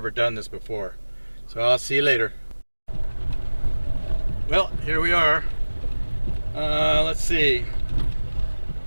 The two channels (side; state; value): both; inverted; correlation -1.00